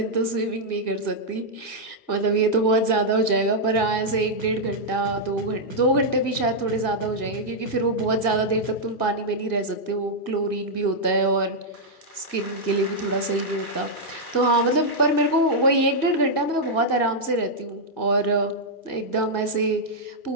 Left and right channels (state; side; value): late; right; 1.8 ms